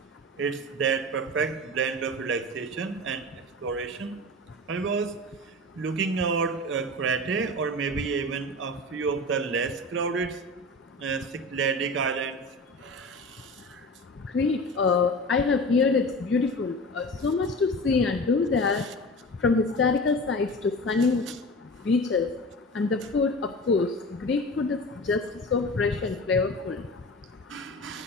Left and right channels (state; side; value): normal; both; correlation 0.33